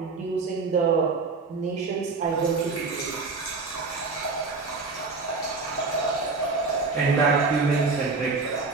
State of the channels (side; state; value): left; quieter; 4.2 dB